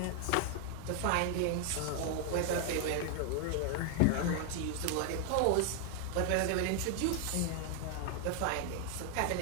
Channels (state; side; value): different; both; correlation 0.00